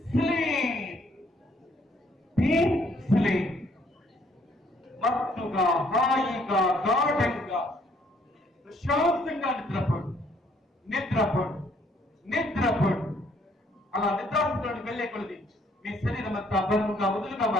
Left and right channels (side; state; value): both; normal; correlation 0.65